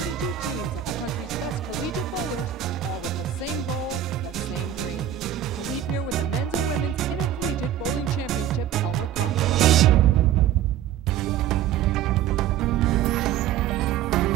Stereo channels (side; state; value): left; quieter; 10.4 dB